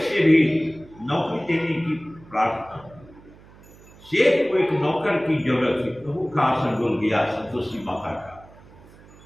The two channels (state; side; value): noise; right; hum, 23 dB below the sound